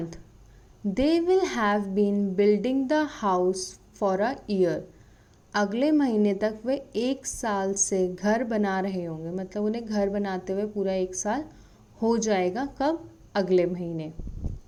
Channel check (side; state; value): both; identical; correlation 1.00